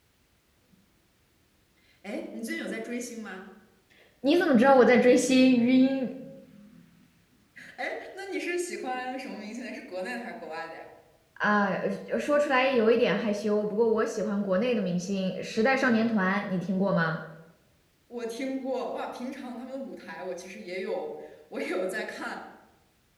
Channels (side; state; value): both; identical; correlation 1.00